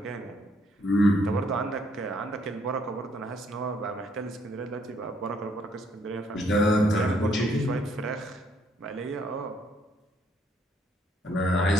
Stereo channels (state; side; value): normal; both; correlation 0.69